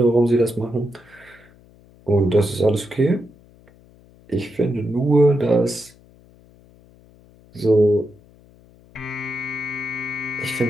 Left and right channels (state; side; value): noise; left; hum, 27 dB below the sound